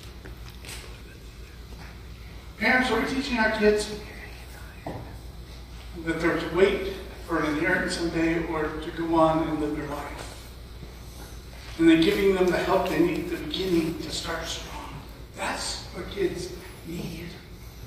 Parents, are we teaching our kids that they're to wait for an inheritance someday or to go on and live their life? And then giving them the help they need at the beginning to start strong. That's what kids need.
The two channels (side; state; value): both; identical; correlation 1.00